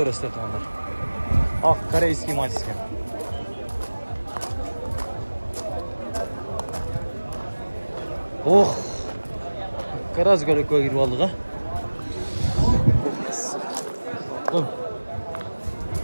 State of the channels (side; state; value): both; inverted; correlation -1.00